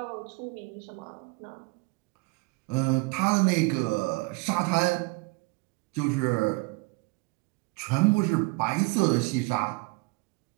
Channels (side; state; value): left; quieter; 26.9 dB